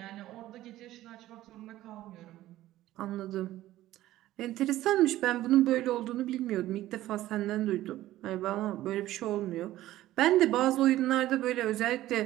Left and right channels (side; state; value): left; quieter; 14.9 dB